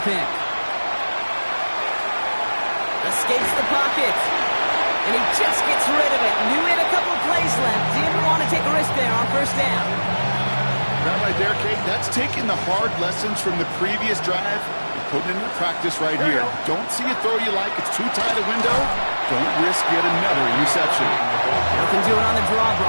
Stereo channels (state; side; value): inverted; both; correlation -1.00